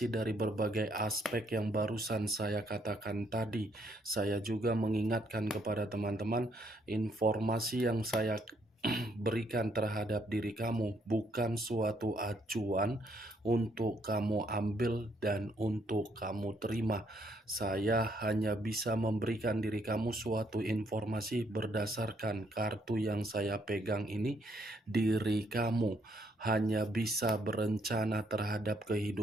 dari berbagai aspek yang barusan saya katakan tadi, saya juga mengingatkan kepada teman-teman, informasi yang saya berikan terhadap diri kamu bukan suatu acuan untuk kamu ambil dan untuk kamu terima. Saya hanya bisa memberikan diri kamu suatu informasi berdasarkan kartu yang saya pegang ini. Diri kamu hanya bisa berencana terhadap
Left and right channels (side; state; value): both; normal; correlation 0.70